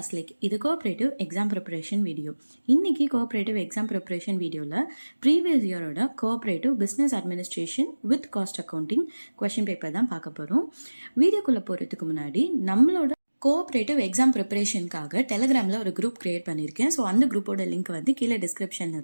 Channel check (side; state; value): both; inverted; correlation -1.00